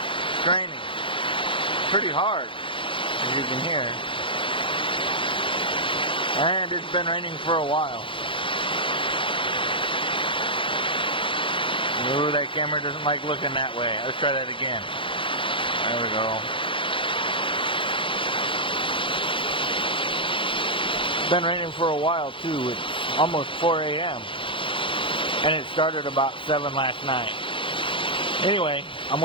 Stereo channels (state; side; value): late; right; 0.25 ms